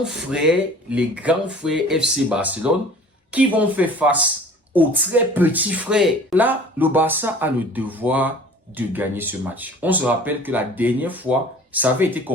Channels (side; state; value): both; normal; correlation 0.47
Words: frères FC Barcelone qui vont faire face aux très petits frères. Là, le Barça a le devoir de gagner ce match. On se rappelle que la dernière fois, ça avait été